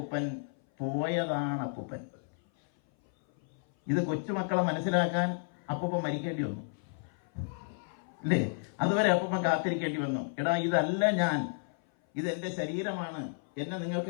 പോയതാണ് അപ്പൂപ്പൻ. ഇത് കൊച്ചുമക്കളെ മനസ്സിലാക്കാൻ അപ്പൂപ്പൻ മരിക്കേണ്ടി വന്നു അല്ലേ? അതുവരെ അപ്പൂപ്പൻ കാത്തിരിക്കേണ്ടി വന്നു. എടാ, ഇതല്ല ഞാൻ, ഇതെന്റെ ശരീരമാണ്, എന്നെ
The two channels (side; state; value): right; silent; 56 dB below the other